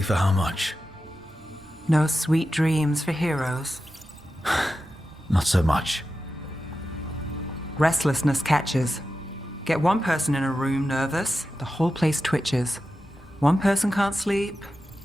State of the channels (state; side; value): normal; both; correlation 0.92